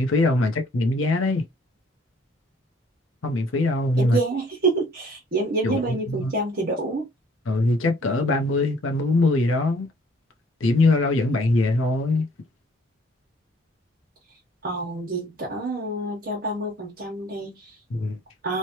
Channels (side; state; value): both; normal; correlation 0.58